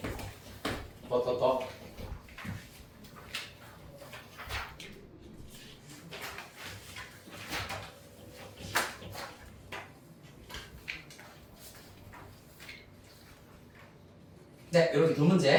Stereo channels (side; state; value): both; identical; correlation 1.00